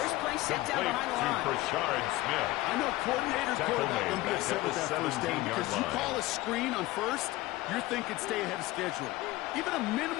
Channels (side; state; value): right; quieter; 18.3 dB